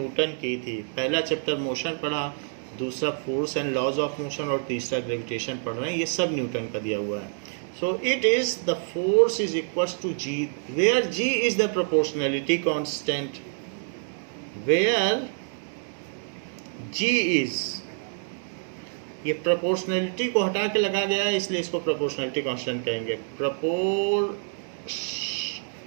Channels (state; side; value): silent; left; 60 dB below the other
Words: की थी। पहला चैप्टर मोशन पढ़ा, दूसरा force and laws of motion, और तीसरा ग्रेविटेशन पढ़ रहे हैं। ये सब न्यूटन का दिया हुआ है। So it is the force is equals to G, where G is the proportionality constant. Where G is, ये प्रोपोर्शनैलिटी को हटा के लगा गया है इसलिए इसको प्रोपोर्शनैलिटी कांस्टेंट कहेंगे।